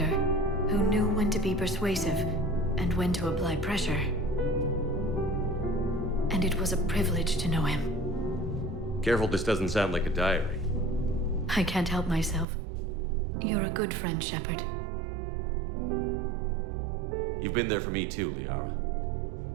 who knew when to be persuasive and when to apply pressure. And it was a privilege to know him. Careful this doesn't sound like a diary. I can't help myself. You're a good friend, Shepard. You've been there for me too, Liara.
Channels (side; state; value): left; drops out; at 12.5 s